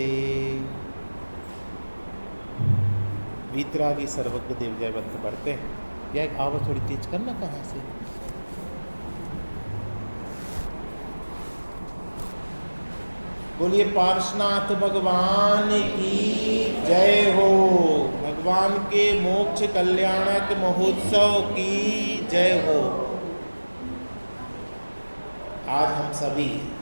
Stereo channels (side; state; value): both; inverted; correlation -1.00